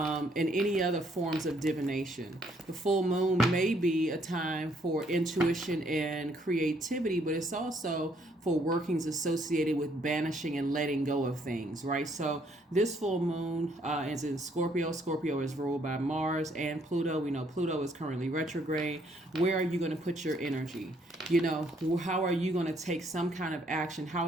any other forms of divination. The full moon may be a time for intuition and creativity, but it's also for workings associated with banishing and letting go of things, right? So this full moon is in Scorpio. Scorpio is ruled by Mars and Pluto. We know Pluto is currently retrograde. Where are you going to put your energy? You know, how are you going to take some kind of action? How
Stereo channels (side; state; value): both; normal; correlation 0.68